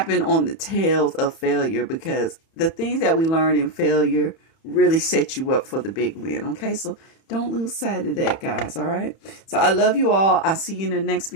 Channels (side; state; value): right; late; 31 ms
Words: on the tails of failure, because the things that we learn in failure really set you up for the big win, okay? So don't lose sight of that, guys, all right? So I love you all. I'll see you in the next